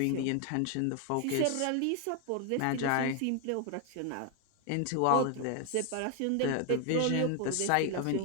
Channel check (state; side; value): different; both; correlation 0.01